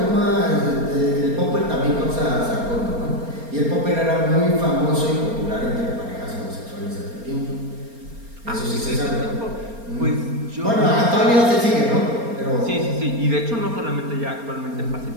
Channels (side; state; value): left; late; 4.3 ms